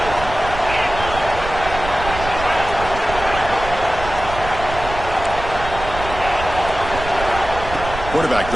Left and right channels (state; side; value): noise; right; rumble, 9 dB below the sound